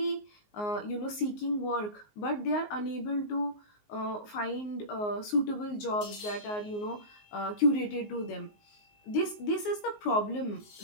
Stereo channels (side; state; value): right; late; 19 ms